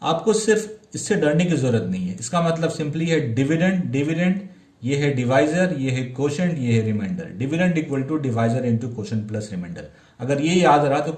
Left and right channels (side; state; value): both; identical; correlation 1.00